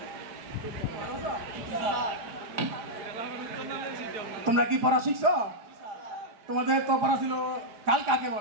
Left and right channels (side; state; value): left; late; 4.9 ms